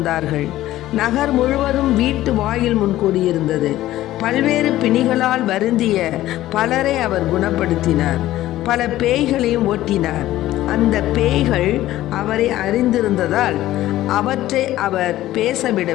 நகர் முழுவதும் வீட்டு வாயில் முன் கூடியிருந்தது. பல்வேறு பிணிகளால் வருந்திய பலரை அவர் குணப்படுத்தினார். பல பேய்களையும் ஓட்டினார். அந்த பேய்கள் அவரை அறிந்திருந்ததால் அவற்றை அவர்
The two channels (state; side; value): quieter; right; 14.8 dB